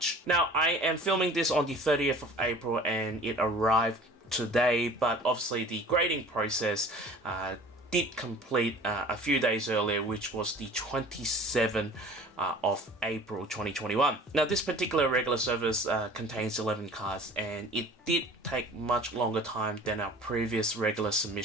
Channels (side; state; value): both; normal; correlation 0.45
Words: Now, I am filming this on the 30th of April and it arrived today, but obviously the grading process did complete a few days earlier, which was the 27th of April 2021. Now, this particular regular service contains 11 cards, and it did take much longer time than our previous regular